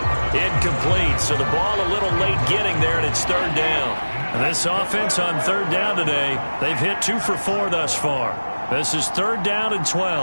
Incomplete, so the ball a little late getting there, and it's 3rd down. And this offense on 3rd down today, they've hit 2 for 4 thus far. This is 3rd down and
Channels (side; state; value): both; inverted; correlation -1.00